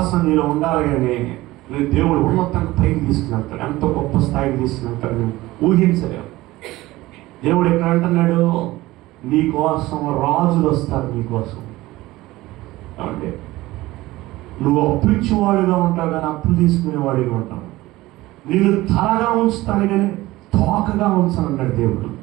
నీలో ఉండాలి. కానీ నువ్వు దేవుడు ఉన్నతంగా పైకి తీసుకుని ఎంతో గొప్ప స్థాయికి తీసుకుని నువ్వు ఊహించలేవు. దేవుడు ఎక్కడ అంటున్నాడు, నీకోసం రాజులు వస్తారు నీకోసం. అంటే నువ్వు అప్పు ఇచ్చేవాడిగా ఉంటావు కానీ అప్పులు తీసుకునేవాడిగా ఉంటావు. నేను తలగా ఉంచుతాను కానీ తోకగా ఉంచాను అన్నాడు దేవుడు.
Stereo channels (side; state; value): left; quieter; 18.3 dB